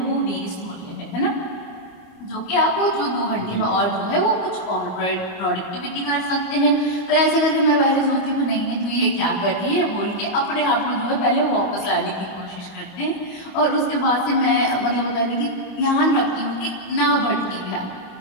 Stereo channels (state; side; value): late; right; 25 ms